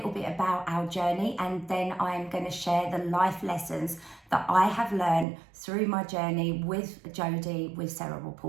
bit about our journey, and then I'm going to share the life lessons that I have learned through my journey with Jodie with cerebral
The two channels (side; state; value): left; drops out; at 5.2 s